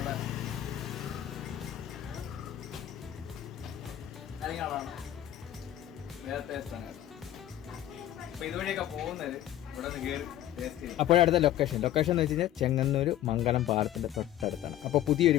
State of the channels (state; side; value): quieter; right; 12.6 dB